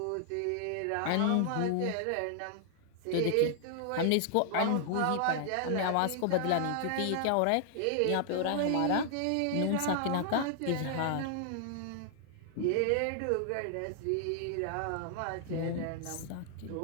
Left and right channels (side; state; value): both; different; correlation 0.00